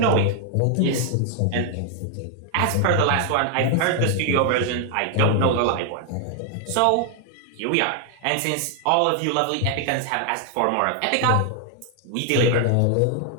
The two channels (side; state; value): both; different; correlation 0.00